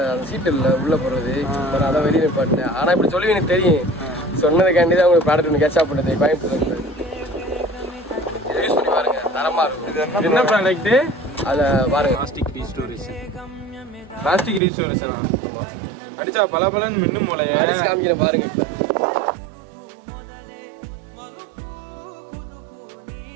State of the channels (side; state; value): left; drops out; at 14.6 s